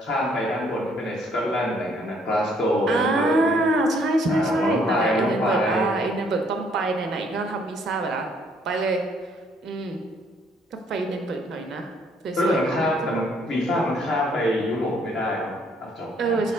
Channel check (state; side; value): normal; both; correlation 0.65